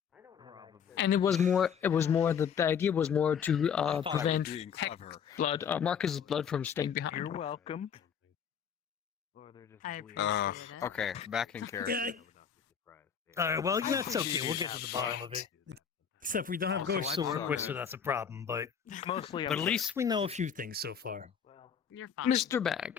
And it was more the idea was more to prevent blood, Marcus's blood from staying behind. You're welcome. I appreciate it. Okay, back in character. All right, well, that's okay. We'll get to the bottom of it. Except we don't have ghosts to work with, so that's a problem. But at least we know a few things so far. You're fine. Mr.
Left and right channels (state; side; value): quieter; right; 7.5 dB